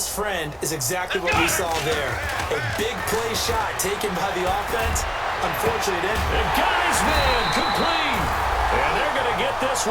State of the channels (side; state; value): both; identical; correlation 1.00